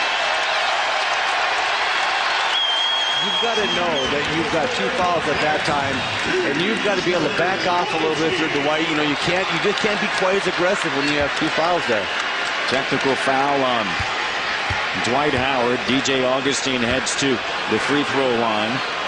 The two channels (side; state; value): both; identical; correlation 1.00